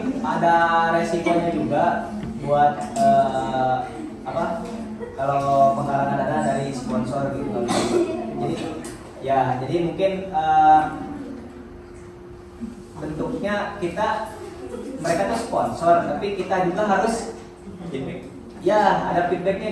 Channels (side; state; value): both; identical; correlation 1.00